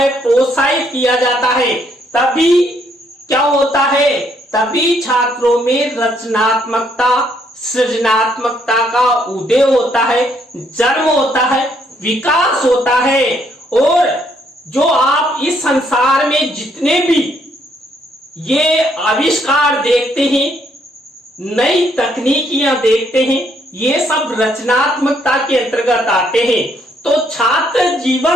प्रोत्साहित किया जाता है। तभी क्या होता है, तभी छात्रों में रचनात्मकता, सृजनात्मकता का उदय होता है, जन्म होता है, विकास होता है। और जो आप इस संसार में जितने भी ये आविष्कार देखते हैं, नई तकनीकियां देखते हैं, ये सब रचनात्मकता के अंतर्गत आते हैं। तो छात्र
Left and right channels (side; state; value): both; normal; correlation 0.70